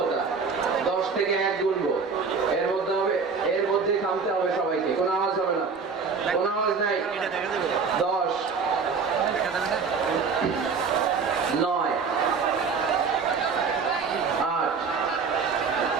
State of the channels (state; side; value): quieter; left; 5.2 dB